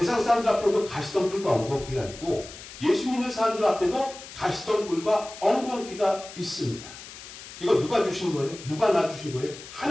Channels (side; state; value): left; noise; hiss, 15 dB below the sound